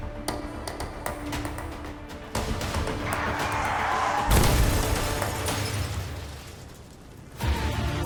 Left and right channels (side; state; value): both; identical; correlation 1.00